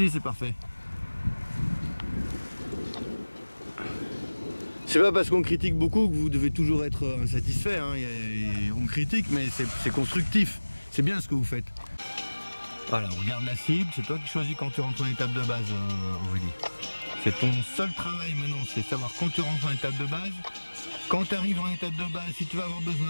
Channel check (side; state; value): both; inverted; correlation -1.00